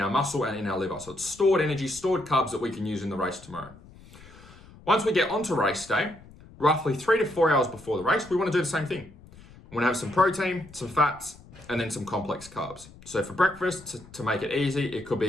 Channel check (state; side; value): noise; left; rumble, 21 dB below the sound